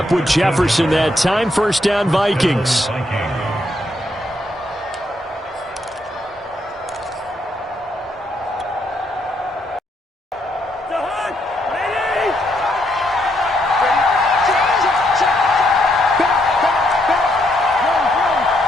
with Jefferson that time. First down, Vikings.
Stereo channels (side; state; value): both; normal; correlation 0.75